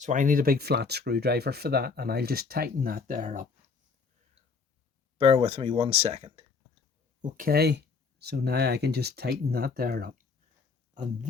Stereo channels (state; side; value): quieter; right; 4.8 dB